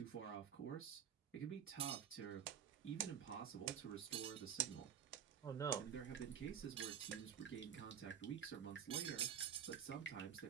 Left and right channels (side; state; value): left; quieter; 8.6 dB